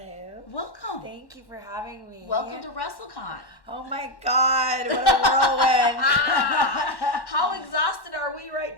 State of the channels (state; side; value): late; right; 1.1 ms